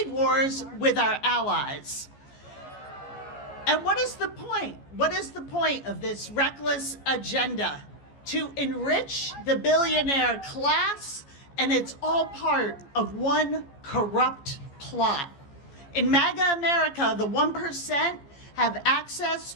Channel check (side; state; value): right; late; 14 ms